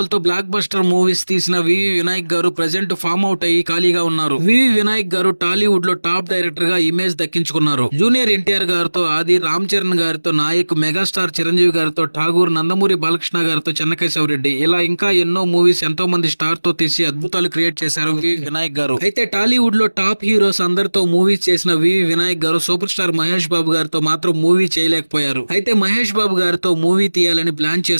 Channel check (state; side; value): inverted; both; correlation -1.00